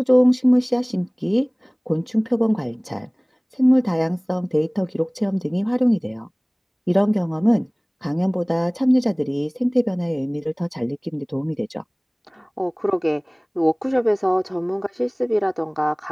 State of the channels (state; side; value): identical; both; correlation 1.00